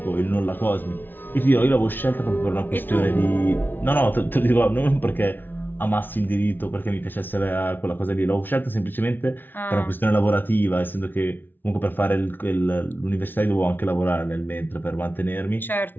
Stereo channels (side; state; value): right; late; 0.093 ms